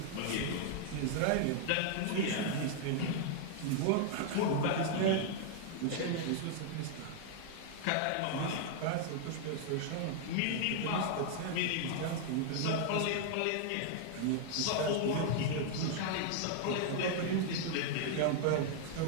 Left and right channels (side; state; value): both; different; correlation 0.00